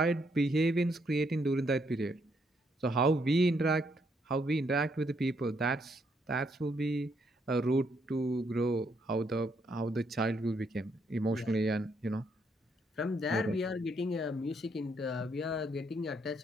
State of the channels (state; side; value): normal; both; correlation 0.74